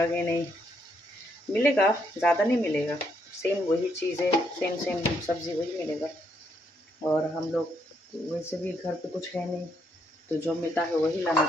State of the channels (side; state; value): both; normal; correlation 0.75